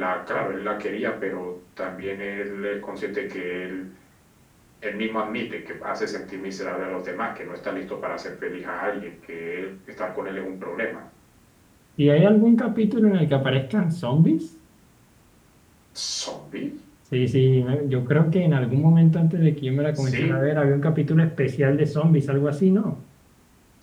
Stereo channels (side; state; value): both; identical; correlation 1.00